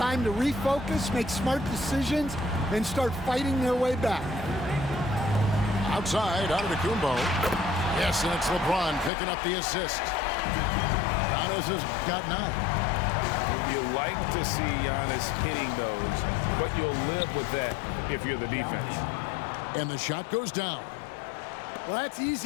to refocus, make smart decisions, and start fighting their way back. Outside, out of the Kumbo. Yes, and it's LeBron picking up the assist. Giannis has got 9. You like to see Giannis hitting those, but you'll live with that if you're the defense. And the shot goes down. Well, that's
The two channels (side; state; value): right; drops out; at 9.1 s